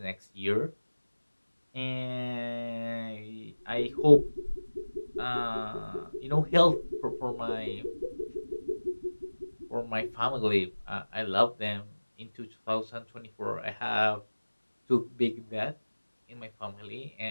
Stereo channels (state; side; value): inverted; both; correlation -1.00